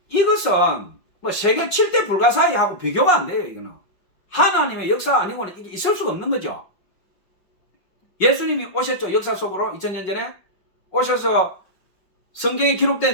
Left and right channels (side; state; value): right; late; 5.5 ms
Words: 이것은 뭐 세계 7대 불가사의하고 비교가 안 돼요. 이거는 하나님의 역사 아니고는 이게 있을 수가 없는 거죠. 예수님이 오셨죠. 역사 속으로 2000년 전에 오셔서 성경에